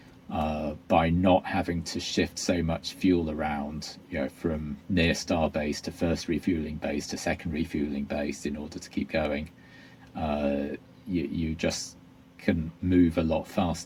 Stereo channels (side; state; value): both; identical; correlation 1.00